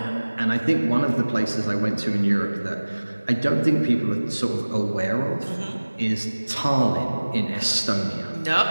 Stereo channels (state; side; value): inverted; both; correlation -1.00